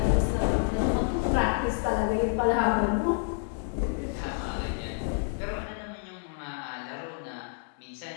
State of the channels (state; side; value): silent; right; 59 dB below the other